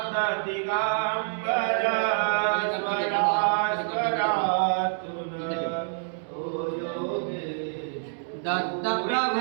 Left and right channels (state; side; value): silent; left; digital silence